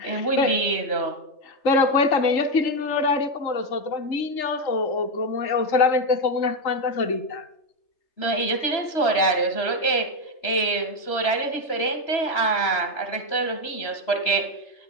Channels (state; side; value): late; right; 3.3 ms